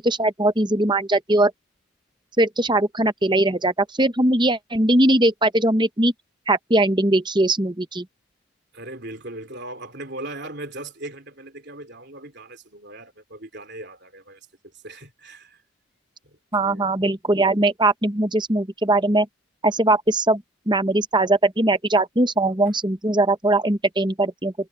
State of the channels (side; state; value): both; normal; correlation 0.59